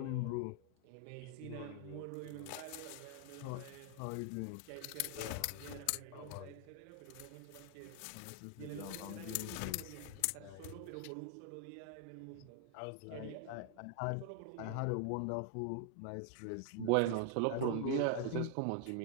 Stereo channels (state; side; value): different; both; correlation 0.00